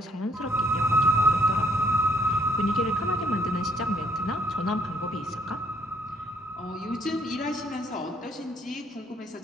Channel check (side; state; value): both; normal; correlation 0.66